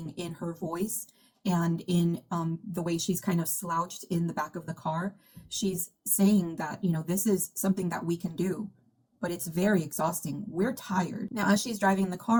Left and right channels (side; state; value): both; identical; correlation 1.00